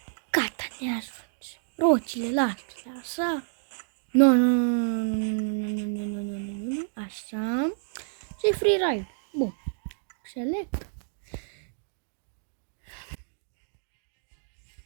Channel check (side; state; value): left; silent; digital silence